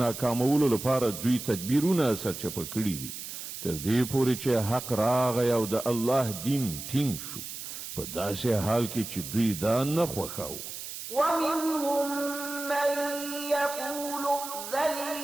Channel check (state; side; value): noise; right; hiss, 9 dB below the sound